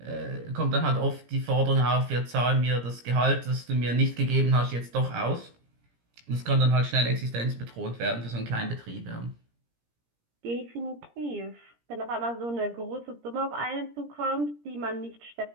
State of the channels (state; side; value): late; left; 17 ms